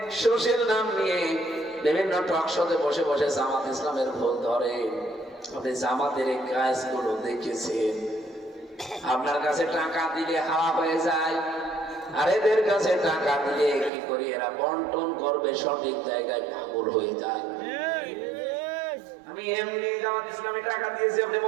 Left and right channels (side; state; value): left; drops out; at 13.9 s